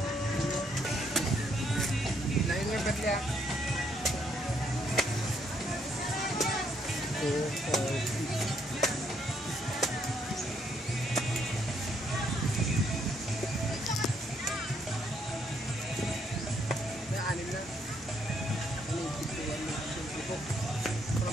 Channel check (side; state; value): both; normal; correlation 0.72